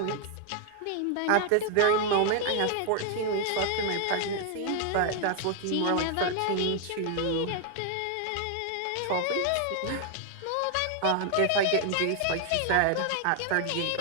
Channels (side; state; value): both; different; correlation 0.00